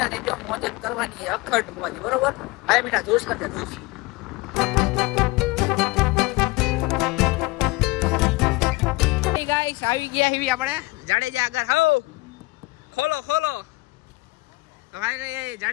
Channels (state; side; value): quieter; right; 22.8 dB